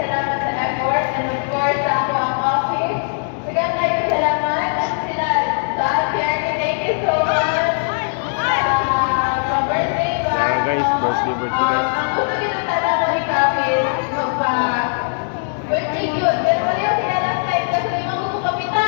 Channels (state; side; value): silent; right; digital silence